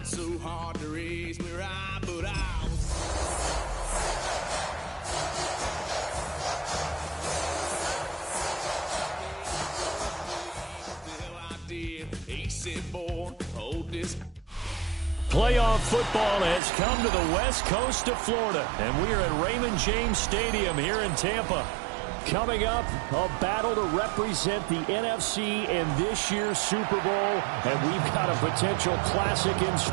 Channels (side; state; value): left; drops out; at 16.6 s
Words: so hard to raise me right, but I was. He said, boy, hold this. Playoff football has come to the west coast of Florida, and we are at Raymond James Stadium here in Tampa. Coming up, a battle to represent the NFC in this year's Super Bowl, and we've got a potential classic in